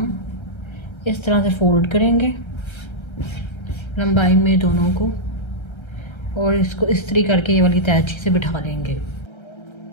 इस तरह से फोल्ड करेंगे लंबाई में दोनों को और इसको इस्त्री करके ये वाली तैची से बिठा लेंगे।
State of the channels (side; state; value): right; late; 1.3 ms